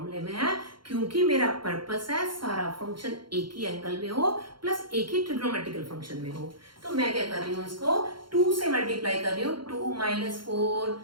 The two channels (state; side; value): late; left; 0.73 ms